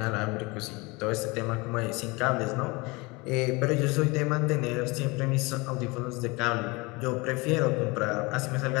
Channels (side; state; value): right; quieter; 25.5 dB